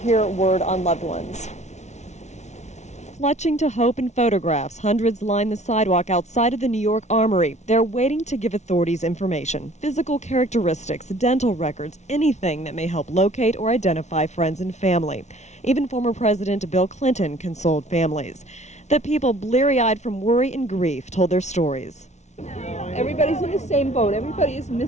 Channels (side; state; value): right; late; 0.33 ms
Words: word on loved ones. Clutching to hope in photographs, hundreds line the sidewalk outside of the New York Armory. They're waiting to give authorities information, physical characteristics, dental records, anything that may help locate or identify friends and family. Even former President Bill Clinton consoled families. The people, bleary-eyed from worry and grief, told their stories. Everybody's in the same boat. Everybody is